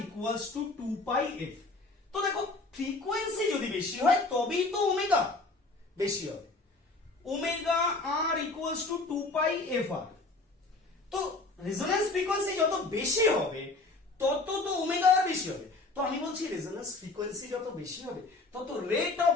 ইকুয়ালস টু 2πf। তো দেখো, ফ্রিকোয়েন্সি যদি বেশি হয় তবেই তো ওমেগা বেশি হবে। Omega R equals to 2πfr। তো রেজোন্যান্স ফ্রিকোয়েন্সি যত বেশি হবে তত তো ওমেগা আর বেশি হবে। তো আমি বলছি রেজোন্যান্স ফ্রিকোয়েন্সি যত বেশি হবে তত rate of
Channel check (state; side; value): quieter; right; 3.3 dB